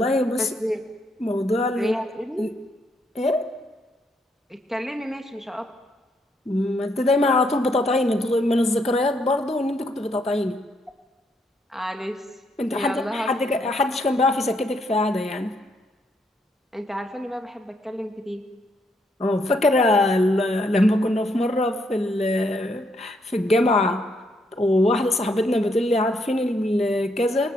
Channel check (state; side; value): normal; both; correlation 0.74